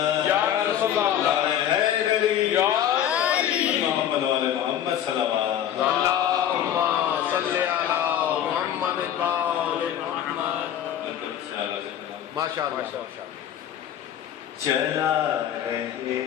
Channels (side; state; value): right; quieter; 10.4 dB